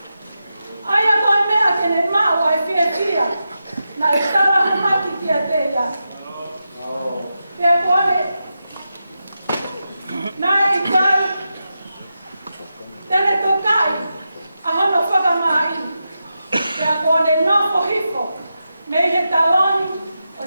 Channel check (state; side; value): inverted; both; correlation -0.89